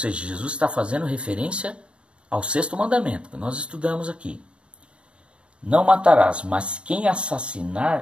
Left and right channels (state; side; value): late; left; 0.057 ms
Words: Jesus está fazendo referência ao 6º mandamento, que nós estudamos aqui. Não matarás, mas quem